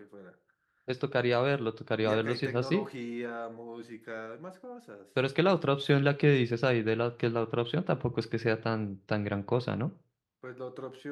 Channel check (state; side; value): identical; both; correlation 1.00